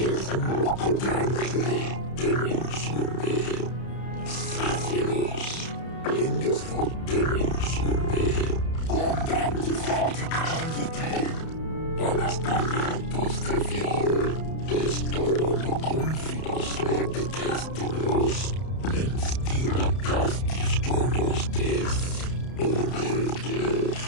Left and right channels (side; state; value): right; late; 31 ms